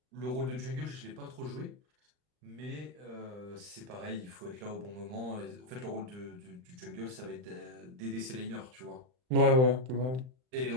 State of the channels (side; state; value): left; late; 39 ms